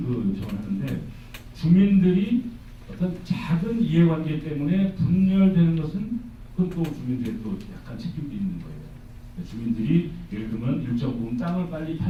전하는데 주민들이 어떤 작은 이해관계 때문에 분열되는 것은 그건 또 주민들의 또 약간 책임도 있는 거예요. 주민들이 예를 들면 일정 부분 땅을 빨리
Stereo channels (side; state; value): both; identical; correlation 1.00